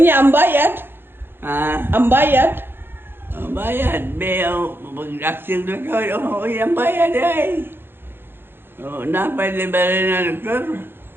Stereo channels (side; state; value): left; late; 0.10 ms